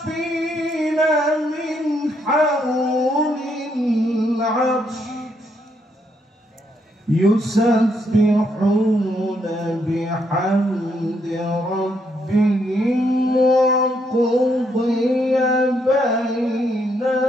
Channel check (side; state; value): both; normal; correlation 0.75